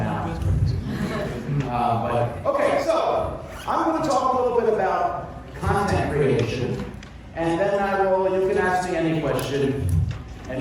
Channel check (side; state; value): both; identical; correlation 1.00